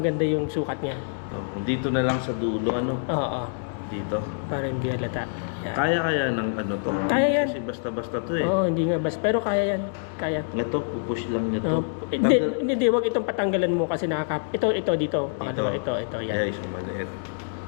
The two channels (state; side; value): silent; right; digital silence